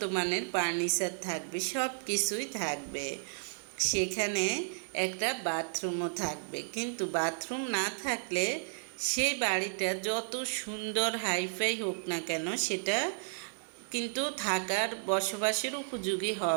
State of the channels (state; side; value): silent; left; 56 dB below the other